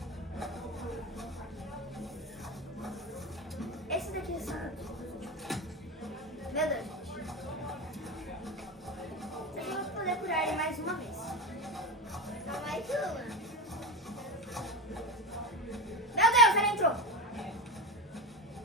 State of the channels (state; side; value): normal; both; correlation 0.19